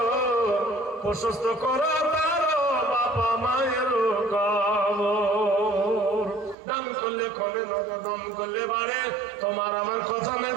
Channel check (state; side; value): drops out; left; at 6.6 s